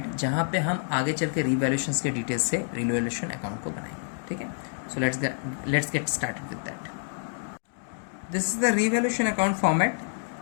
जहाँ पे हम आगे चल के रिवैल्यूएशंस के डिटेल्स से रिवैल्यूएशन अकाउंट को बनाएंगे. ठीक है, so let's get started with that. This is the revaluation account format.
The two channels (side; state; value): right; silent; digital silence